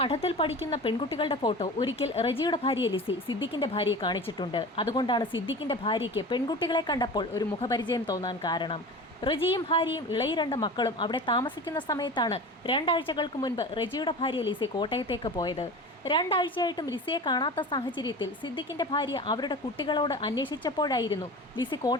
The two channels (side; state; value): both; normal; correlation 0.34